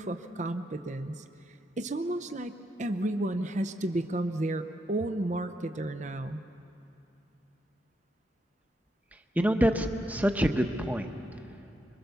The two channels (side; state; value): both; normal; correlation 0.81